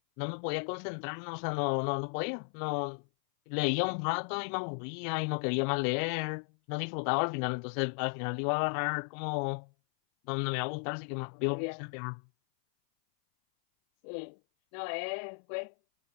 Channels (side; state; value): right; silent; 55 dB below the other